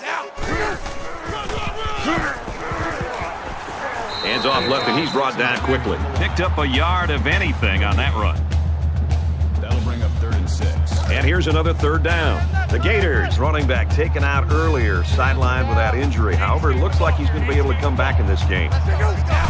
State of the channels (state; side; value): identical; both; correlation 1.00